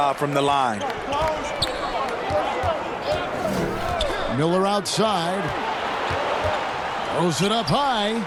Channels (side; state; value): both; identical; correlation 1.00